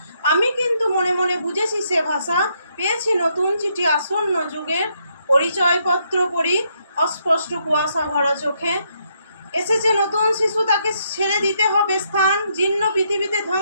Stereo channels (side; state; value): both; inverted; correlation -0.75